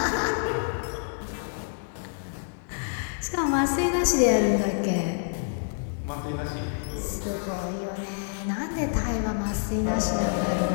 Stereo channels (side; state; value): right; silent; digital silence